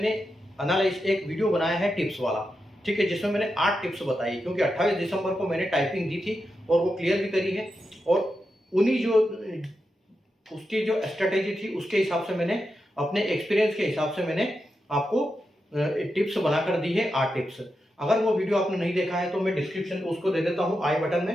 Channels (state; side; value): normal; both; correlation 0.88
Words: एक वीडियो बनाया है टिप्स वाला, ठीक है, जिसमें मैंने 8 टिप्स बताई, क्योंकि 28 दिसंबर को मैंने टाइपिंग दी थी और वो क्लियर भी करी है। और उन्हीं जो उसकी जो स्ट्रेटेजी थी उसके हिसाब से मैंने अपने एक्सपीरियंस के हिसाब से मैंने आपको टिप्स बनाकर दी है, 8 टिप्स। अगर वो वीडियो आपने नहीं देखा है तो मैं डिस्क्रिप्शन उसको दे देता हूँ आई बटन